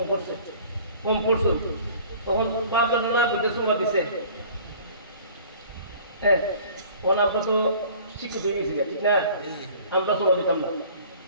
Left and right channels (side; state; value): both; inverted; correlation -0.49